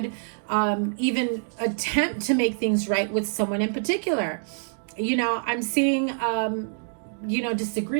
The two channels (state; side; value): silent; left; digital silence